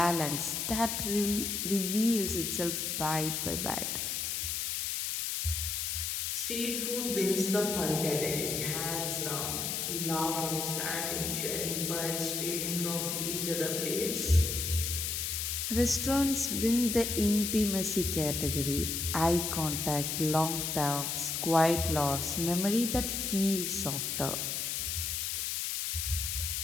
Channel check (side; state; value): left; noise; hiss, 1 dB below the sound